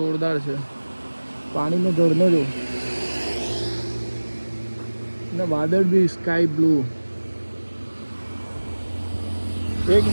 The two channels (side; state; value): both; inverted; correlation -1.00